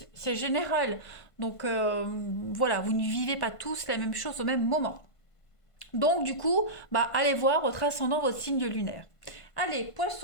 c'est général. Donc voilà, vous ne vivez pas tous la même chose au même moment. Donc du coup, allez voir votre ascendant, votre signe lunaire. Allez,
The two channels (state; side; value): late; right; 1.5 ms